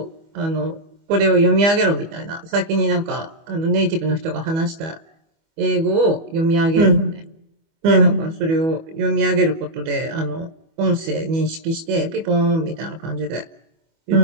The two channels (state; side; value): late; left; 25 ms